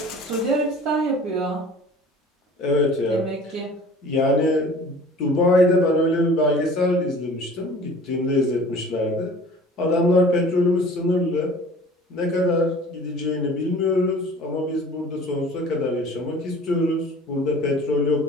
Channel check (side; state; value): both; normal; correlation 0.46